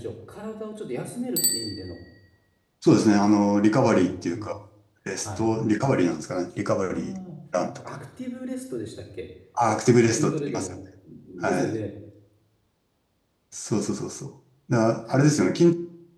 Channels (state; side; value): identical; both; correlation 1.00